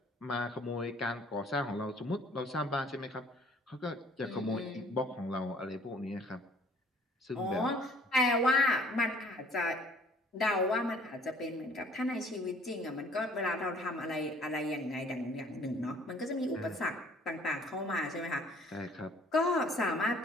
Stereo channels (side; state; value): both; normal; correlation 0.56